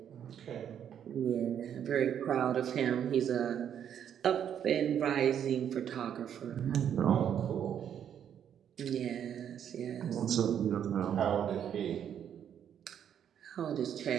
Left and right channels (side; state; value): left; quieter; 9.1 dB